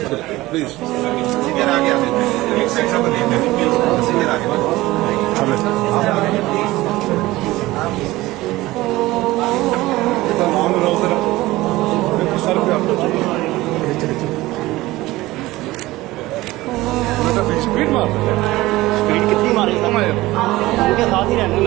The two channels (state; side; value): quieter; left; 18.5 dB